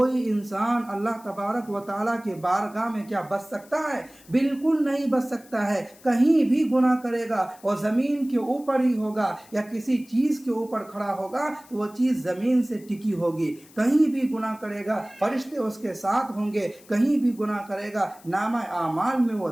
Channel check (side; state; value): left; noise; hiss, 25 dB below the sound